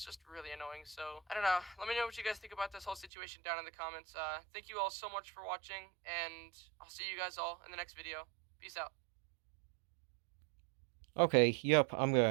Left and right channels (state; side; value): drops out; left; at 3.1 s